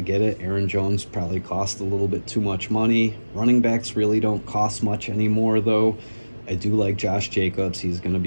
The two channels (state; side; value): inverted; both; correlation -1.00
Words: get it. Aaron Jones probably cost a little bit too much money. Running backs really don't cost much anymore, though. I do like Josh Jacobs. He's going to